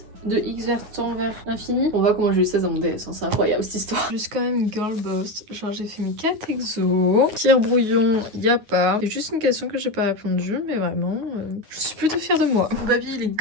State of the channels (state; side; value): late; left; 9.4 ms